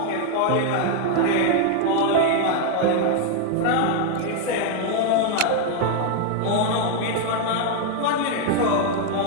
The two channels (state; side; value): different; both; correlation 0.00